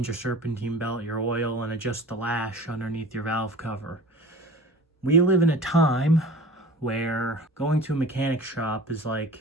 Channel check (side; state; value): both; normal; correlation 0.40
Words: your serpentine belt, your oil, and adjust the lash underneath your valve cover. We live in a time where going to a mechanic shop is like